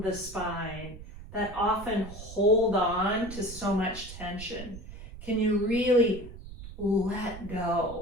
the spine that often hold on to so much tension. Can you really let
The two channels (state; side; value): noise; right; rumble, 13 dB below the sound